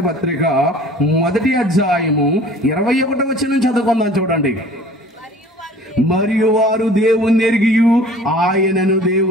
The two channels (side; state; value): both; normal; correlation 0.47